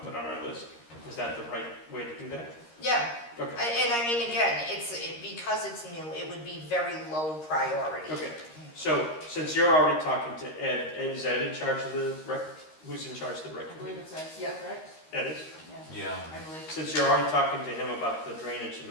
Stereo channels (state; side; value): late; right; 13 ms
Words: put on our list? Is that the right way to do that? Yeah, Okay, and I mean, again, because it's new, it would be very low priority. okay. So since you're already talking to Ed, is Ed in charge of the rec, who's in charge of the rec I believe committee? it says, Yeah. right? Ed is? Yeah, Yeah. I believe. Since you're already talking to him about the drainage and